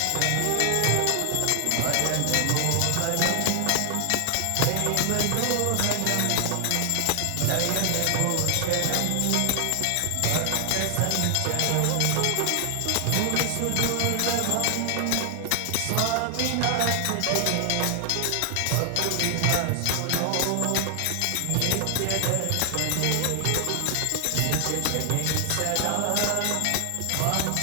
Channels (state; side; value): different; both; correlation 0.00